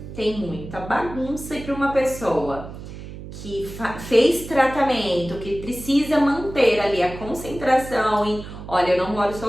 tem muita bagunça, e para uma pessoa que fez tratamento, que precisa manter ali a concentração em, olha, eu não moro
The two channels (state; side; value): noise; right; hum, 12 dB below the sound